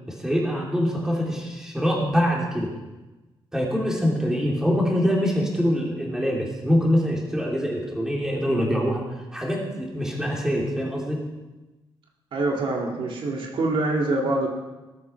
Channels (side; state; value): both; normal; correlation 0.84